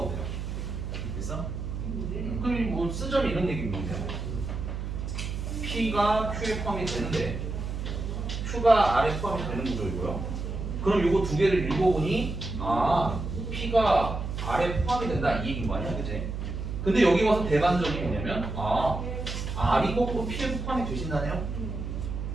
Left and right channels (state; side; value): noise; right; hum, 5 dB below the sound